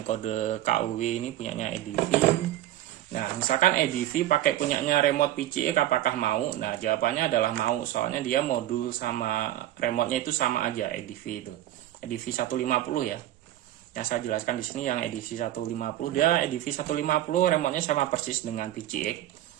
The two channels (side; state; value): left; quieter; 13.5 dB